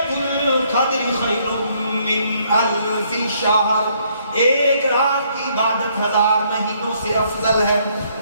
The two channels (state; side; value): inverted; both; correlation -0.68